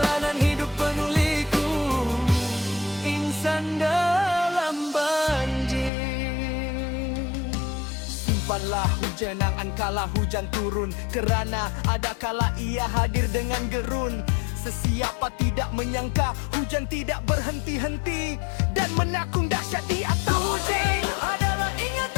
hidup penuh liku, insan dalam banjir. Simpanlah hujan angan kala hujan turun, kerana ada kala ia hadir dengan gerun. Sesiapa tidak menyangka hujan tidak berhenti-henti, dan menakung dahsyat di atas. Hujan adalah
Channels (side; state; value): right; drops out; at 5.9 s